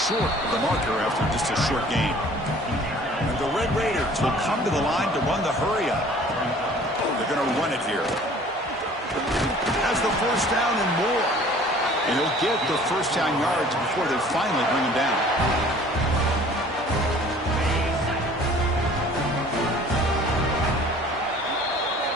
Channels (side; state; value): both; normal; correlation 0.50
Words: of the marker after just a short game. And the Red Raiders will come to the line to run the hurry up. They're going to run it here. Has the 1st down and more. And he'll get the 1st down yards before they finally bring him down.